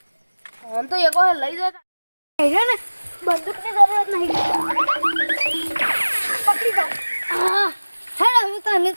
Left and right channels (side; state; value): both; inverted; correlation -1.00